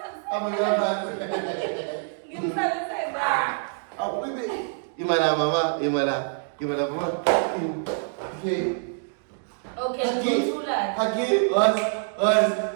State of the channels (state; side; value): silent; left; digital silence